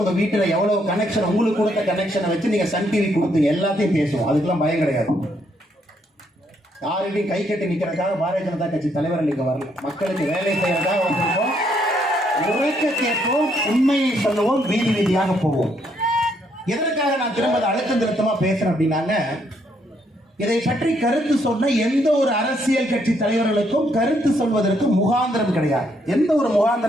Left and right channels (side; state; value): both; normal; correlation 0.73